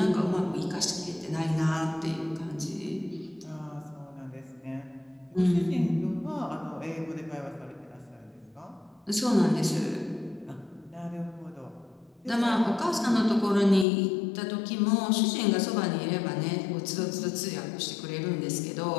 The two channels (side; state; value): right; drops out; at 13.9 s